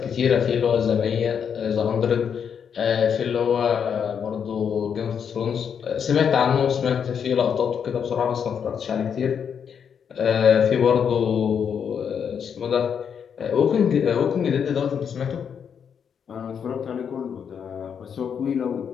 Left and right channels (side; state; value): right; quieter; 7.4 dB